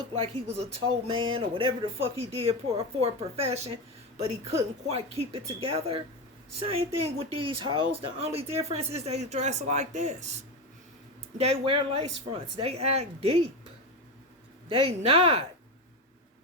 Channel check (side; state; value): both; normal; correlation 0.17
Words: like he was a toe man or whatever the fuck he did for a profession, but he couldn't quite keep it together. Same thing with these hoes. The only difference is they dress like this. They wear lace fronts. They act deep. They not.